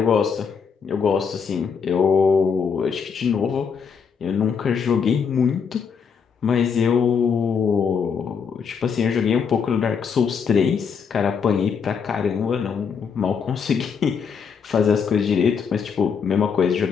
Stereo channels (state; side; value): quieter; right; 6.3 dB